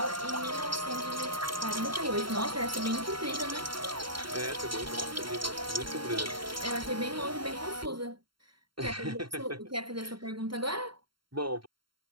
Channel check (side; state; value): left; late; 0.73 ms